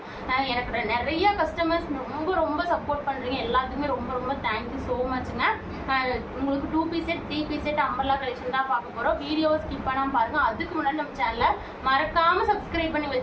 எனக்கு நிறைய கஸ்டமர்ஸ் ரொம்ப சப்போர்ட் பண்ணுறீங்க. எல்லாத்துக்குமே ரொம்ப தேங்க்யூ ஸோ மச்ங்க. உங்களுக்கு 2 piece set 3 piece set umbrella collection தான் பார்க்க போகிறோம். வீடியோவை ஸ்கிப் பண்ணாமல் பாருங்கள். அதுக்கு முன்னாடி நம்ம சேனலை மறக்காமல் சப்ஸ்கிரைப் பண்ணி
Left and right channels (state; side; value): identical; both; correlation 1.00